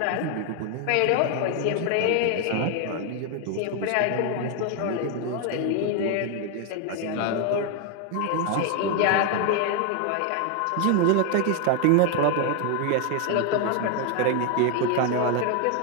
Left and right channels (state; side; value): different; both; correlation 0.01